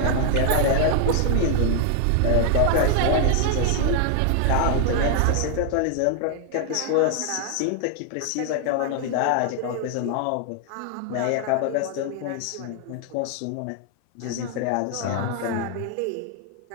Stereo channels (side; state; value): both; different; correlation 0.00